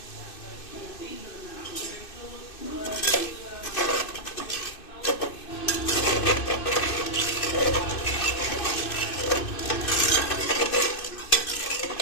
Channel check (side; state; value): right; late; 2.6 ms